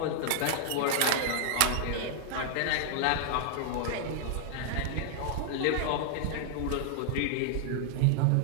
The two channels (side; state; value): both; different; correlation 0.00